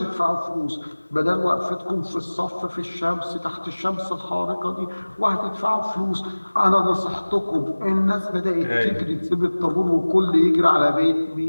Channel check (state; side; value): inverted; both; correlation -1.00